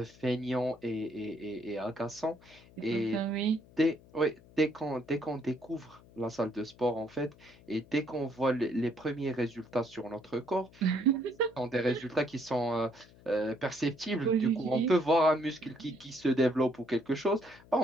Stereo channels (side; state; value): left; noise; hum, 24 dB below the sound